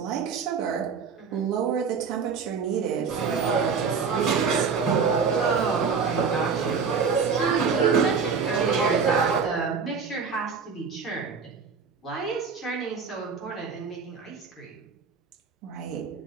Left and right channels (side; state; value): left; quieter; 5.7 dB